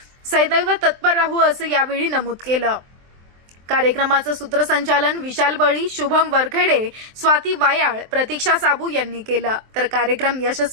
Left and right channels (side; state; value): left; late; 23 ms